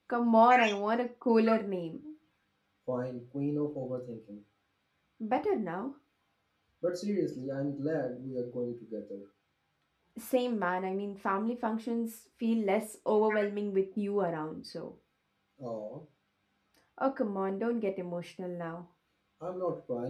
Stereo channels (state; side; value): identical; both; correlation 1.00